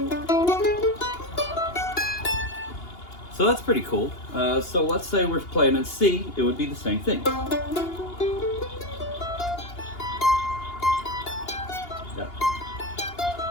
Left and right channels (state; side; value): late; right; 2.8 ms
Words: So that's pretty cool. So let's say we're playing in C, it would be the same thing. Yeah.